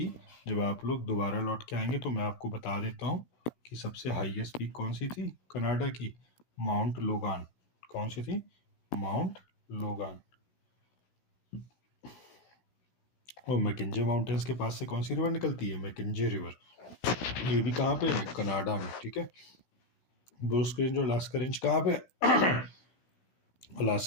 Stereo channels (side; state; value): right; late; 17 ms